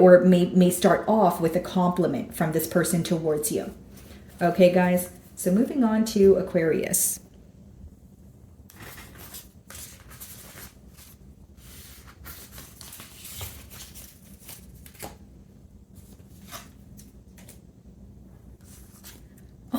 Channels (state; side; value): identical; both; correlation 1.00